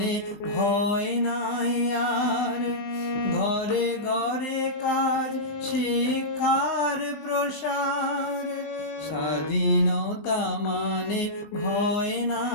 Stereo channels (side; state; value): right; late; 20 ms